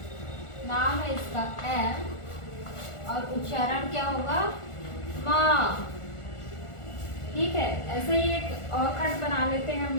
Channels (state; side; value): late; right; 1.4 ms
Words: नाम है इसका एम, और उच्चारण क्या होगा, मा, ठीक है। ऐसे ही एक और खंड बना लेते हैं हम